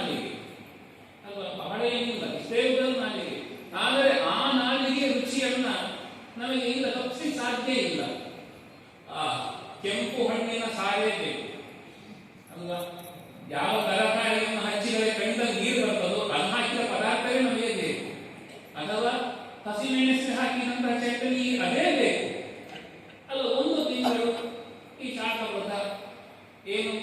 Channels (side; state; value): both; identical; correlation 1.00